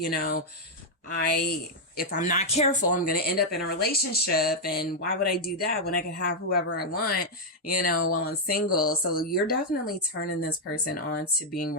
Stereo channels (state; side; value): normal; both; correlation -0.02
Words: know, if I'm not careful, I'm going to end up in a relationship. And why would I do that when I can have whoever I want, you know, while I'm single? So you're definitely turning this person on to being